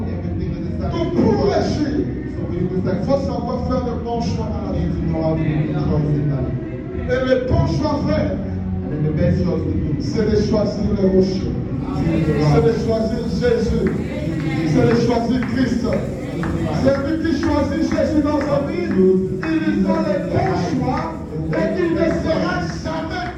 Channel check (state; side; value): identical; both; correlation 1.00